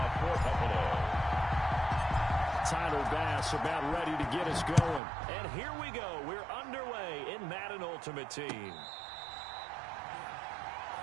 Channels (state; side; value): drops out; left; at 5.0 s